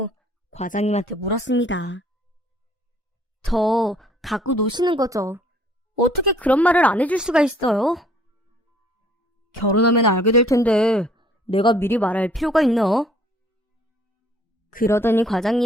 과장님한테 물었습니다. 저 갖고 노시는 거죠? 어떻게 그런 말을 안 해줄 수가 있어요? 결혼하면 알게 될 텐데 내가 미리 말할 필요가 있나? 그러더니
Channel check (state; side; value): normal; both; correlation 0.59